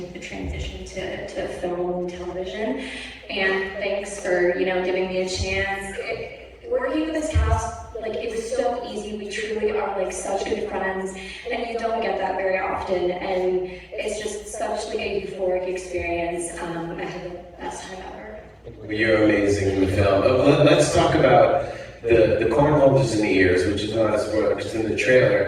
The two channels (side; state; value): both; identical; correlation 1.00